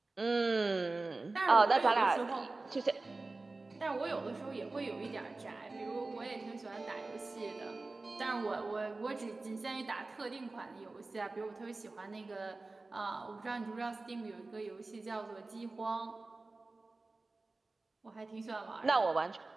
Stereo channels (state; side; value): quieter; left; 3.4 dB